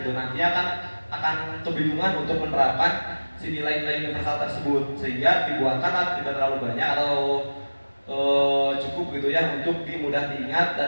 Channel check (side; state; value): both; inverted; correlation -1.00